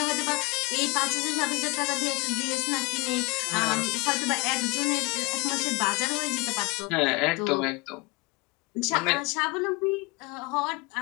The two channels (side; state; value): right; quieter; 26.4 dB